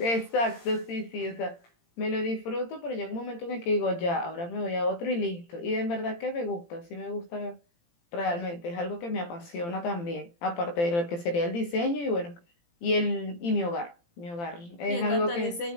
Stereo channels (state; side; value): late; right; 18 ms